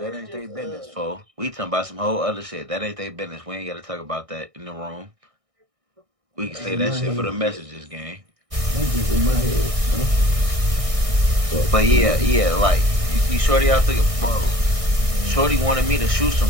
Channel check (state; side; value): late; left; 1.6 ms